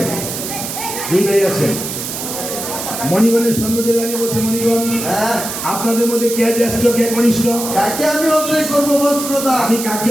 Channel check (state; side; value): noise; right; hiss, 6 dB below the sound